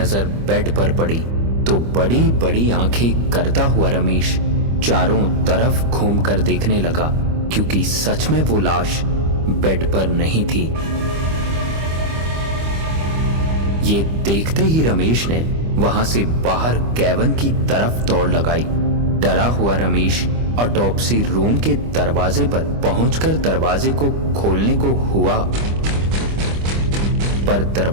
बेड पर पड़ी तो बड़ी बड़ी आंखें करता हुआ रमेश चारों तरफ घूमकर देखने लगा, क्योंकि सच में वो लाश बेड पर नहीं थी। ये देखते ही रमेश ने वहां से बाहर कैबिन की तरफ दौड़ लगाई। डरा हुआ रमेश ऑटोप्सी रूम के दरवाजे पर पहुंचकर दरवाजे को खोलने को हुआ, पर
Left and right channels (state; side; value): late; left; 25 ms